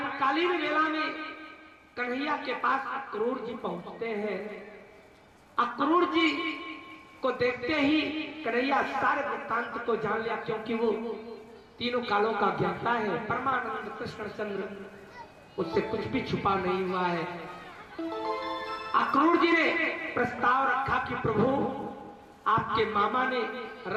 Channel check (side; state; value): both; identical; correlation 1.00